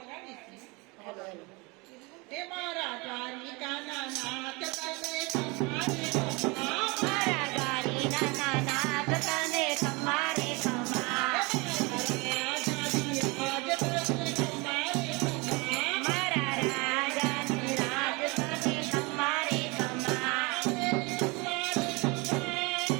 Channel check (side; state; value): left; quieter; 26.9 dB